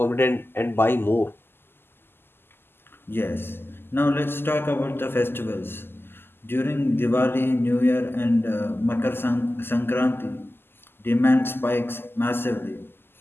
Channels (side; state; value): right; late; 0.11 ms